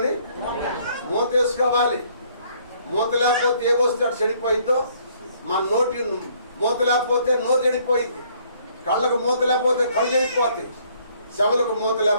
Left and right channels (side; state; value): both; inverted; correlation -0.63